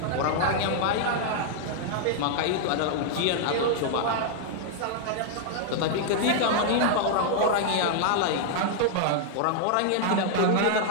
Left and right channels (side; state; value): both; different; correlation -0.01